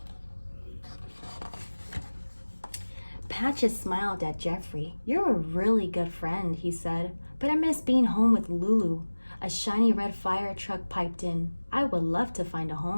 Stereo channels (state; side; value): inverted; both; correlation -1.00